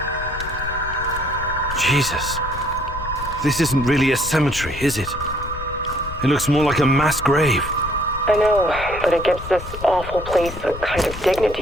Jesus. This isn't really a cemetery, is it? It looks more like a mass grave. I know, but it gives this awful place a kind of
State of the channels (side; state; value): left; noise; rumble, 10 dB below the sound